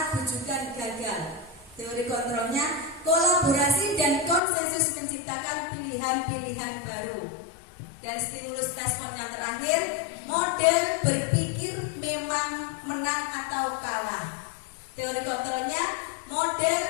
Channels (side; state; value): right; drops out; at 4.4 s